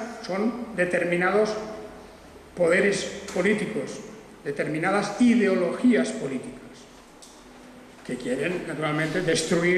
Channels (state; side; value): identical; both; correlation 1.00